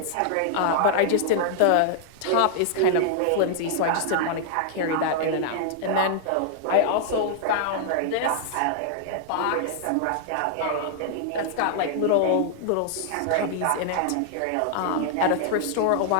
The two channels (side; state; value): both; different; correlation -0.01